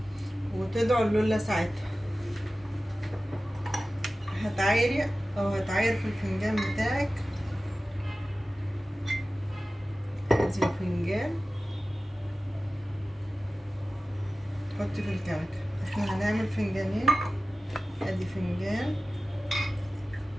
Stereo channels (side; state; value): both; normal; correlation 0.95